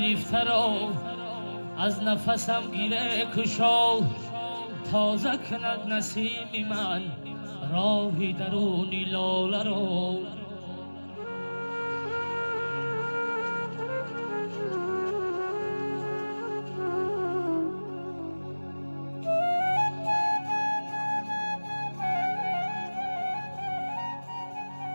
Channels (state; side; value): inverted; both; correlation -1.00